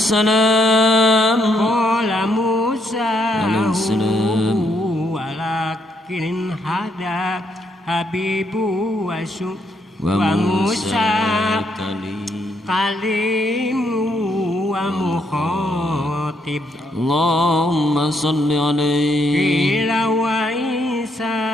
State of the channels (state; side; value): normal; both; correlation 0.74